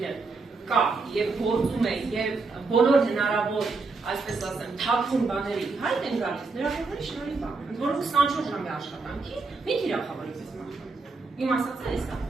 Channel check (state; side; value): quieter; left; 4.0 dB